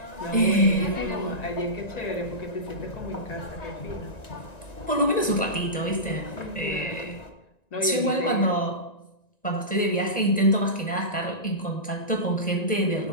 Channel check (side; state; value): right; late; 1.9 ms